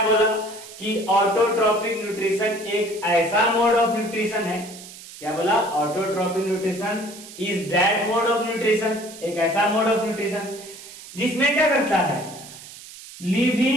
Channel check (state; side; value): noise; right; hiss, 16 dB below the sound